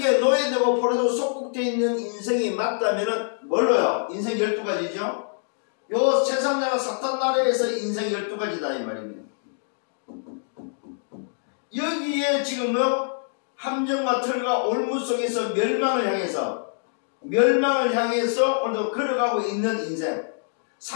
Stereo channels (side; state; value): right; silent; digital silence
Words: 노예되고 포로되고 속국되어 있는 인생이 맞다면은 뭘로요? 인생 12가지죠? 요 세상 나라 사탄 나라에서 인생 12가지다 이 말입니다. 여기에 지금요 함정과 털과 올무 속에서 멸망을 향해서 오늘도 걸어가고 있는 인생.